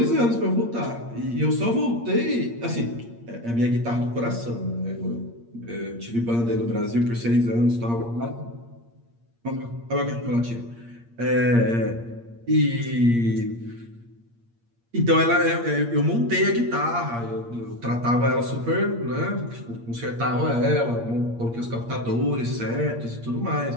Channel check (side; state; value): left; late; 8.6 ms